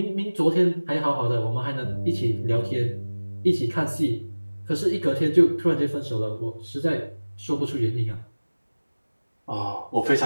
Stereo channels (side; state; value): both; inverted; correlation -1.00